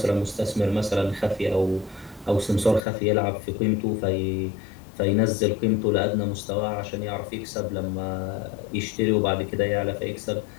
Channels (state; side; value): drops out; right; at 2.8 s